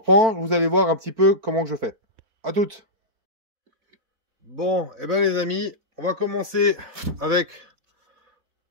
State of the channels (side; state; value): left; late; 4.5 ms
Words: vous allez voir un petit peu comment que je fais. À toutes. Bon, et ben les amis, on va commencer avec